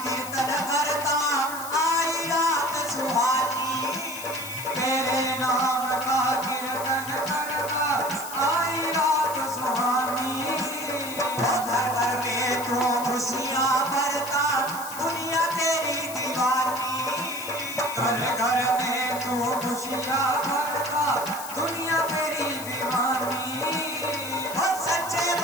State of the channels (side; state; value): left; noise; hiss, 10 dB below the sound